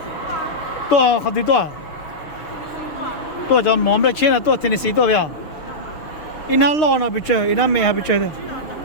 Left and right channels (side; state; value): right; late; 6.6 ms